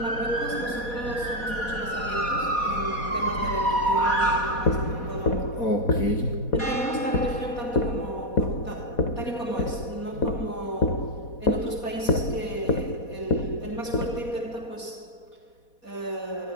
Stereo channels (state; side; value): late; right; 4.2 ms